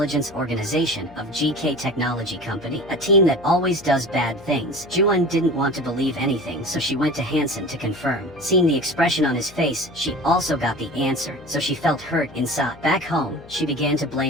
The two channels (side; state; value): left; noise; hum, 22 dB below the sound